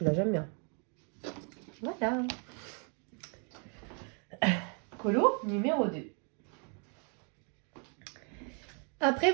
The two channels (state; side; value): quieter; left; 38.1 dB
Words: j'aime bien. Voilà. Colo numéro 2. Après,